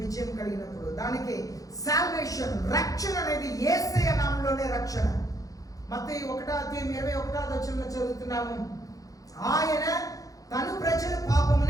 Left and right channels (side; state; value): right; late; 0.17 ms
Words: విజయం కలిగినప్పుడు. దానికి సాల్వేషన్, రక్షణ అనేది యేసయ్య నామములోనే రక్షణ. మత్తయి 1:21 చదువుతున్నాము, ఆయన తను ప్రజల